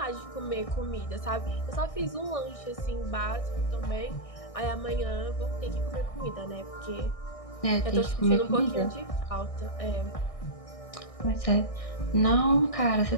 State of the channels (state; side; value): late; right; 1.6 ms